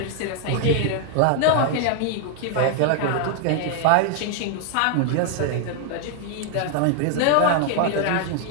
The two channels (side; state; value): both; different; correlation 0.00